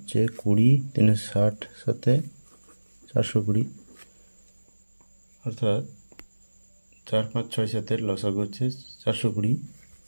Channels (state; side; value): inverted; both; correlation -1.00